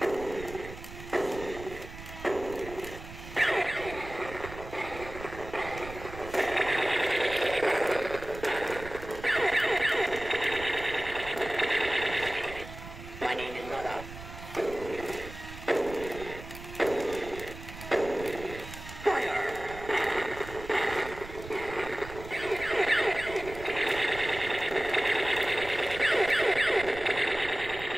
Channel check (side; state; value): right; noise; rumble, 13 dB below the sound